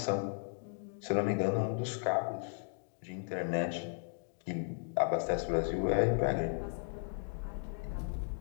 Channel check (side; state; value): right; silent; digital silence